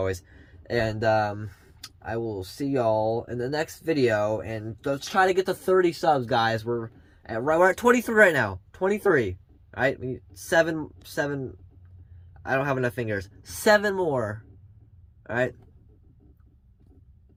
and I will see y'all in the next video, and let's try to get to 30 subs, guys. We're at 23 right now. 23. All right, we need seven. I don't have enough fingers. 7 more. All right.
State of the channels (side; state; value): both; identical; correlation 1.00